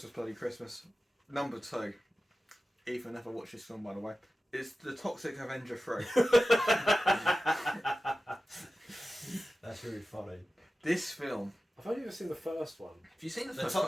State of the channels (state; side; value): normal; both; correlation 0.94